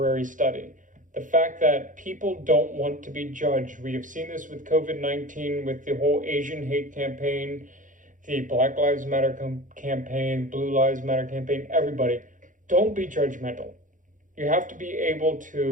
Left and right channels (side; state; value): left; late; 0.38 ms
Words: study. The fact that people don't want to be judged. We have seen this with COVID-19, with the whole Asian hate campaign, the Black Lives Matter campaign, Blue Lives Matter campaign, everybody. Don't be judgmental. You have to be able